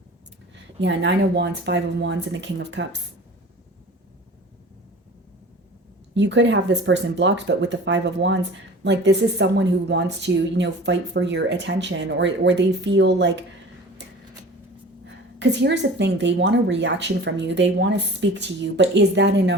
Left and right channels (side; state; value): both; normal; correlation 0.41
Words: Yeah, 9 of Wands, 5 of Wands, and the King of Cups. You could have this person blocked, but with the 5 of Wands, like this is someone who wants to, fight for your attention, or they feel like, because here's the thing, they want a reaction from you. They want to speak to you, but is that